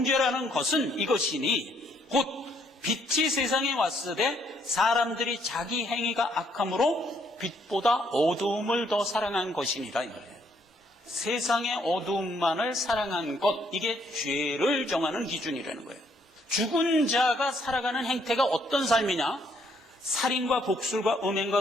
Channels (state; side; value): normal; both; correlation 0.69